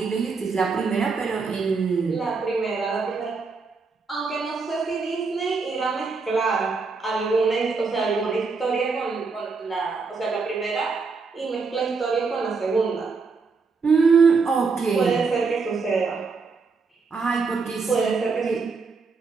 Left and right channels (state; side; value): quieter; left; 4.6 dB